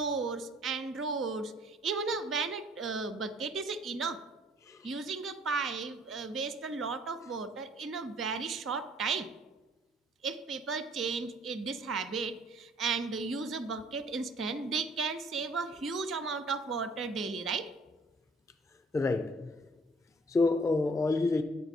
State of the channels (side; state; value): both; normal; correlation 0.58